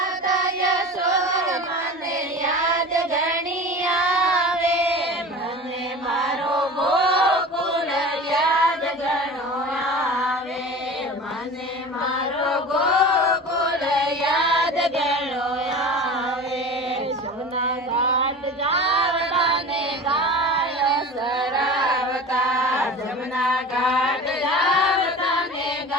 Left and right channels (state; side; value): normal; both; correlation 0.35